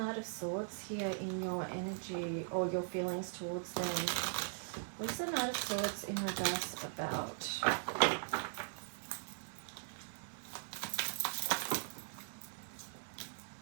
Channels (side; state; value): left; silent; digital silence